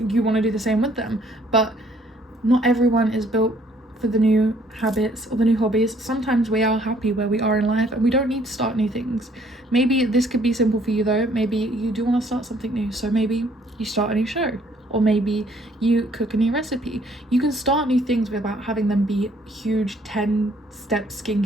to do the same with them. But not everyone is built for the new habits or the new hobbies. Sometimes we are happy where we are in life and we don't need to start new things. Maybe this could be simple for you though. Maybe you do want to start something new, so maybe you start a new show, or maybe you cook a new recipe. You can start new things without having them be huge 10-step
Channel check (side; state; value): both; normal; correlation 0.63